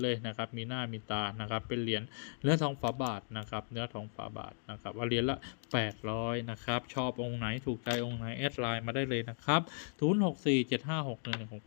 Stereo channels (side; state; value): right; silent; digital silence